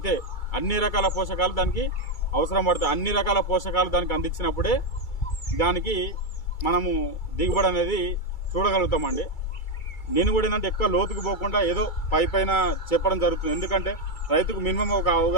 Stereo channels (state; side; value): late; right; 2.3 ms